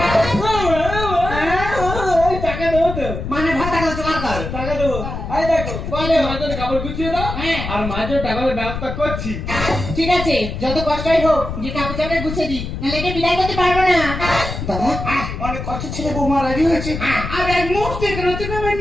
টাকা দেবো তো, মানে ভাত টাকা জোগাড় কর। টাকা দেবো দেখো বলো। মাঝে কাপড় গুছিয়ে দাও হ্যাঁ। আর মাঝে টাকার ব্যবস্থা করছি। ঠিক আছে, যত কষ্টই হোক যে কাপড় চাপড় গুছিয়ে দি, নাহলে একে বিদায় করতে পারবো না। দাদা অনেক কষ্ট ছেলে বৌমা রাজি হয়েছে আর এক মুহূর্তে এখানে তুমি আমায়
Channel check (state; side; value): noise; left; rumble, 6 dB below the sound